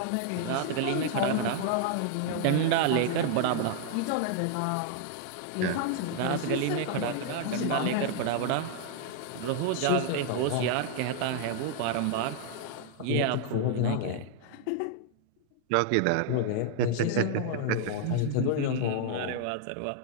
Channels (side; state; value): both; different; correlation 0.00